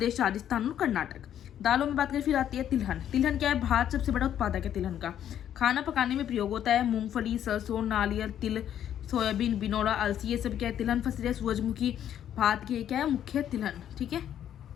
राजस्थान और कर्नाटक। दालों में बात करें फिर आती है तिलहन। तिलहन क्या है? भारत सबसे बड़ा उत्पादक है तिलहन का। खाना पकाने में प्रयोग होता है। मूंगफली, सरसों, नारियल, तिल, सोयाबीन, बिनौला, अलसी, ये सब क्या है? तिलहन फसल है। सूरजमुखी भारत की क्या है? मुख्य तिलहन। ठीक है,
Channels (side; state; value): right; quieter; 10.3 dB